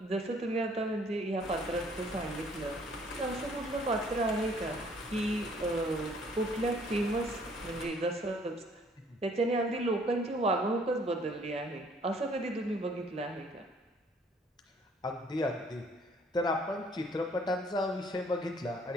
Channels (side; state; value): both; normal; correlation 0.60